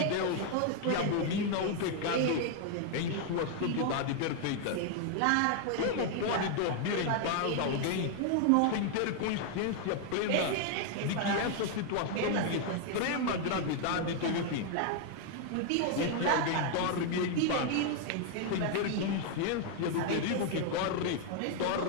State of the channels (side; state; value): both; different; correlation 0.00